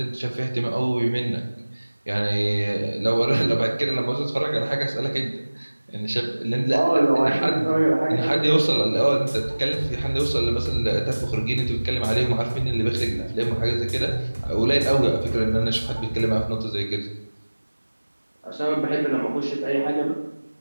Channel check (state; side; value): inverted; both; correlation -1.00